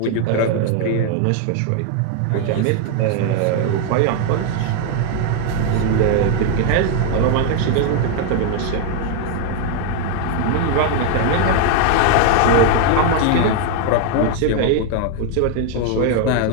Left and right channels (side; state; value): both; different; correlation 0.01